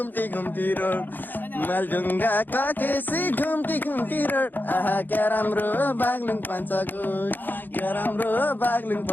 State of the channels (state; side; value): late; right; 0.089 ms